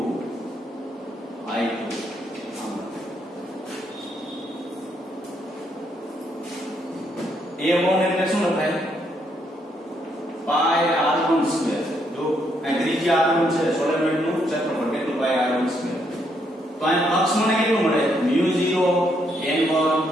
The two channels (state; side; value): normal; both; correlation 0.75